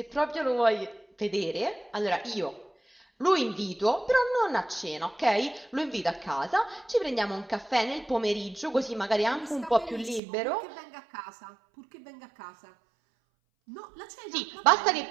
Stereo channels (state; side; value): drops out; left; at 10.2 s